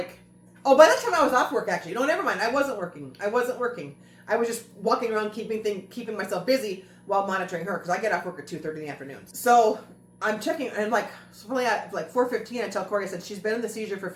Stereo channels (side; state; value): both; identical; correlation 1.00